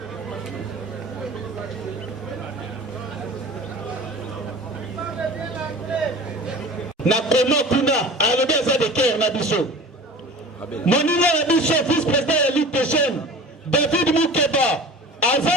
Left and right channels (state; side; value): normal; both; correlation 0.39